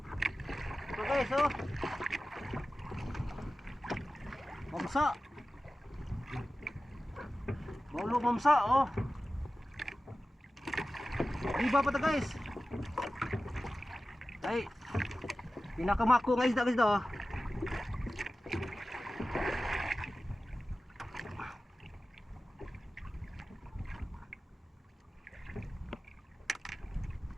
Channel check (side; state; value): both; normal; correlation 0.95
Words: Ito guys oh. Mamsa. Baulo mamsa oh. Iba pa to guys. Ay. Pinakamako guys na guys to.